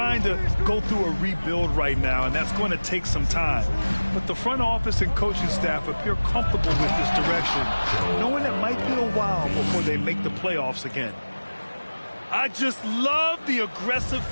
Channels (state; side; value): inverted; both; correlation -1.00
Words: to go through a rebuild right now, and that's going to take some time. But the front office and coaching staff appear comfortable with this direction, knowing it might be a while before they make the playoffs again. I just love the aggressive